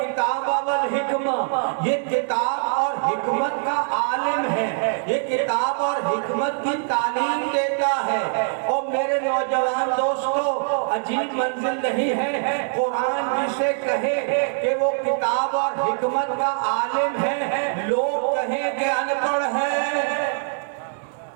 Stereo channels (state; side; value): silent; left; digital silence